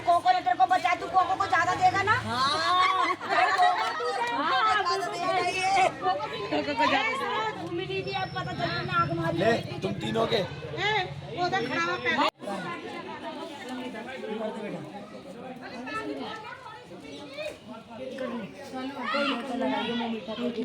कोको ने तेरे को बचा, तू कोको को ज्यादा देगा ना। ले, तुम तीनों के।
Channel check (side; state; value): both; identical; correlation 1.00